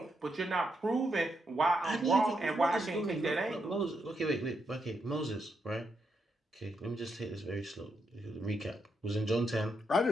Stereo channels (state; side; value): normal; both; correlation 0.81